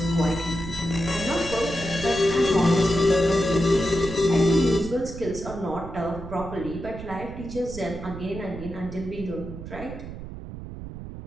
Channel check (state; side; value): noise; right; rumble, 11 dB below the sound